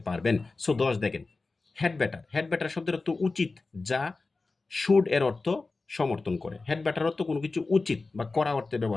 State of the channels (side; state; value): right; quieter; 3.7 dB